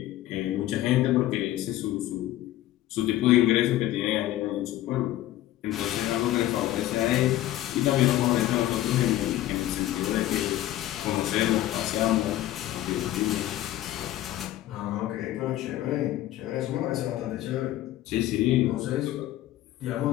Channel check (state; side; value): quieter; right; 14.4 dB